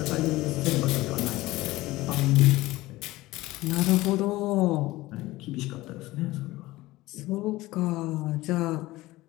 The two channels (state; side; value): quieter; right; 18.5 dB